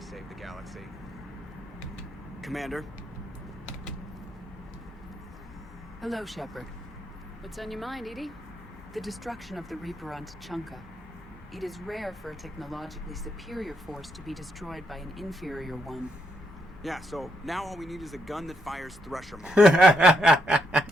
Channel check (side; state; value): both; normal; correlation 0.78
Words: save the galaxy. Commander? Hello, Shepard. What's on your mind, Edie? The destruction of the Reaper on Tuchanka. It is rare for a technologically superior force to be destroyed by an inferior one. Yeah, so now all we need is a gun that fires Thresher Maw.